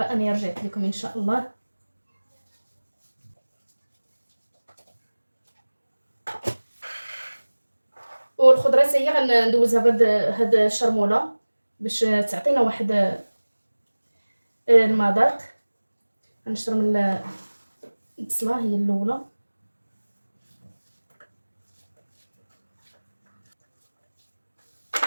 انا رجعت لكم ان شاء الله. والخضره حتى هي غندوزها بهاد الشرموله باش تعطينا واحد المذاق. غنشرمل البصله هي الاولى،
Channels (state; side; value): inverted; both; correlation -1.00